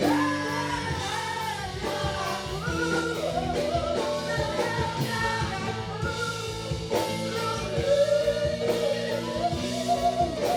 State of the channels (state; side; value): identical; both; correlation 1.00